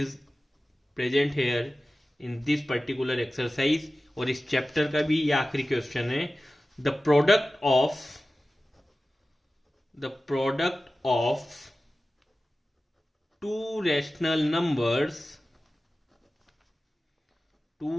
present here in this particular exercise, और इस चैप्टर का भी ये आखिरी क्वेश्चन है, the product of two rational numbers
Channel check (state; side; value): normal; both; correlation 0.95